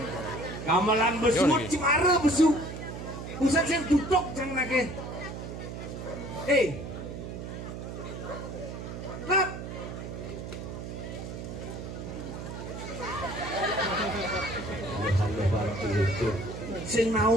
gamelan besut cimara besuk pusat sing duduk jang nake lap sing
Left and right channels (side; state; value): right; noise; hum, 8 dB below the sound